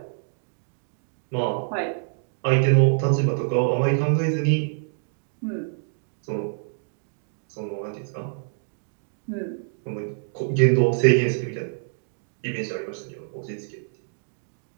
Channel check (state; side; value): silent; left; digital silence